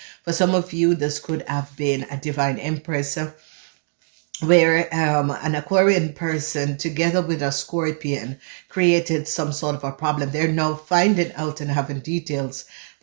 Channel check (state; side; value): silent; left; digital silence